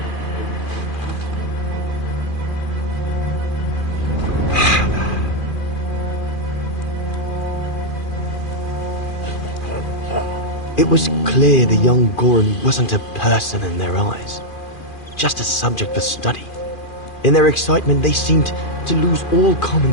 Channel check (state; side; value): late; right; 2.4 ms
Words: It was clear the young Goran wasn't a person in their eyes, just a subject for study. In their excitement, they seemed to lose all common